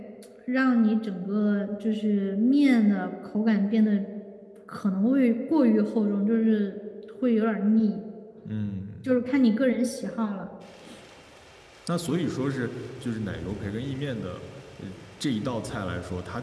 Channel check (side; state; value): both; identical; correlation 1.00